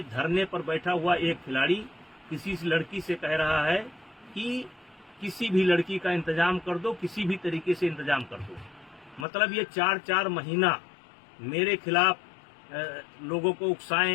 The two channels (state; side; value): drops out; right; at 9.2 s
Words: धरने पर बैठा हुआ एक खिलाड़ी किसी लड़की से कह रहा है कि किसी भी लड़की का इंतजाम कर दो, किसी भी तरीके से इंतजाम कर दो। मतलब ये 4-4 महीना मेरे खिलाफ लोगों को